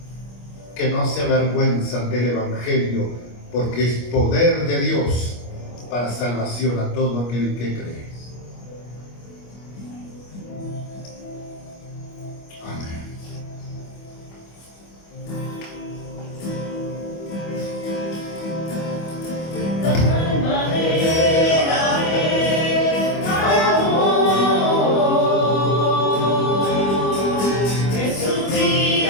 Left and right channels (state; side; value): late; right; 25 ms